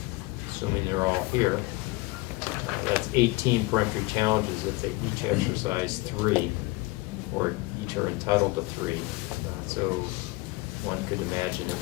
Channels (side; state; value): right; quieter; 22.2 dB